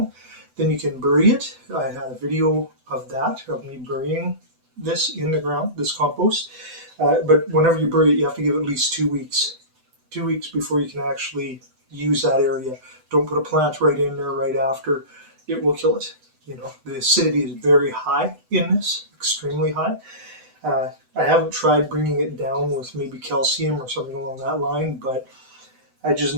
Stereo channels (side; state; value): left; late; 8.0 ms